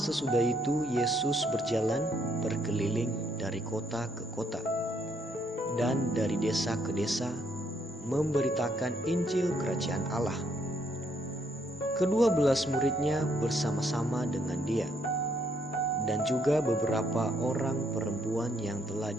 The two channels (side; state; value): both; normal; correlation 0.71